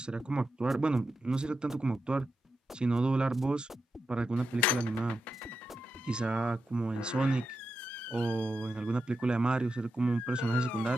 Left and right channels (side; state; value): both; normal; correlation 0.88